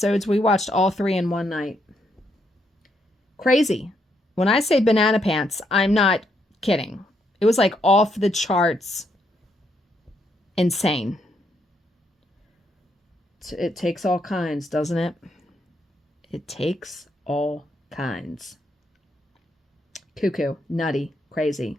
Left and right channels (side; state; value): both; normal; correlation 0.77